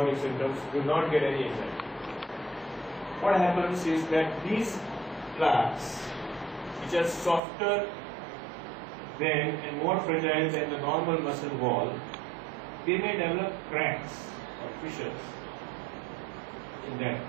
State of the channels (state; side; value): drops out; left; at 7.4 s